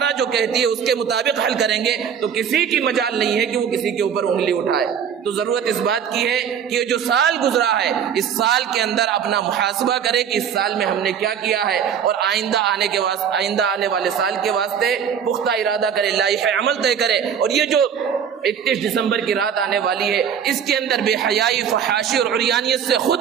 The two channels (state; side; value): quieter; left; 8.0 dB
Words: جو کہتی ہے اس کے مطابق حل کریں گے، تو کسی کی مجال نہیں ہے کہ وہ کسی کے اوپر انگلی اٹھائے۔ تو ضرورت اس بات کی ہے کہ جو سال گزرا ہے، اس سال کے اندر اپنا محاسبہ کرے کہ اس سال میں ہم نے کیا کیا ہے، اور آئندہ آنے والے سال کے واسطے پختہ ارادہ کرے، لائحہ عمل طے کرے۔ اور یہ جو 31 دسمبر کی رات آنے والی ہے، اس کے اندر بے حیائی، فحاشی اور عریانیت سے